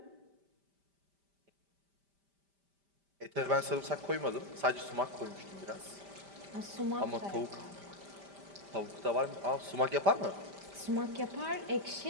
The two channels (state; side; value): late; left; 5.1 ms